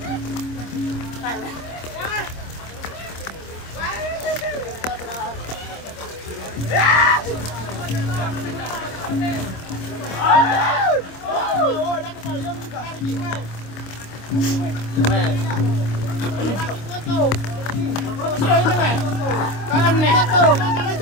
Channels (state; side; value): late; right; 26 ms